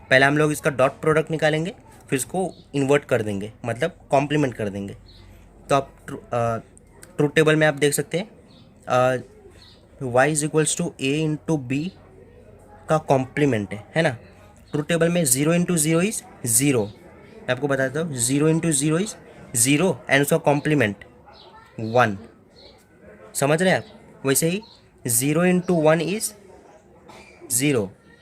पहले हम लोग इसका डॉट प्रोडक्ट निकालेंगे, फिर इसको इन्वर्ट कर देंगे, मतलब कॉम्प्लीमेंट कर देंगे। तो आप ट्रूथ टेबल में आप देख सकते हैं y is equals to A into B का कॉम्प्लीमेंट है ना। ट्रूथ टेबल में 0 इंटू 0 इज 0। मैं आपको बताता हूँ, 0 इंटू 0 इज 0 एंड उसका कॉम्प्लीमेंट 1। समझ रहे हैं आप? वैसे ही 0 इंटू 1 इज 0,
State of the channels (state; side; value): identical; both; correlation 1.00